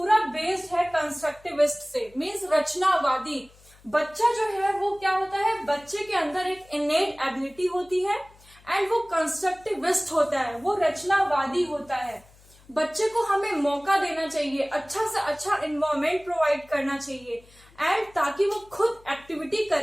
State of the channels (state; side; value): noise; left; hum, 27 dB below the sound